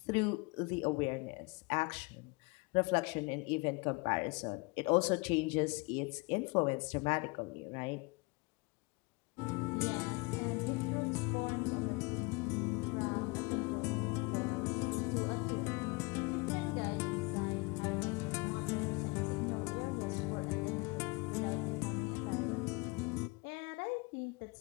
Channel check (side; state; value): right; quieter; 27.9 dB